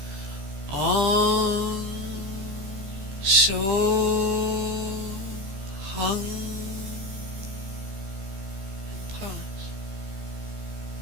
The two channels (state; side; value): late; left; 15 ms